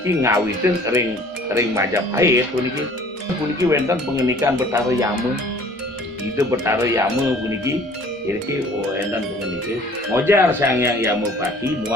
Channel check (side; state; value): both; normal; correlation 0.52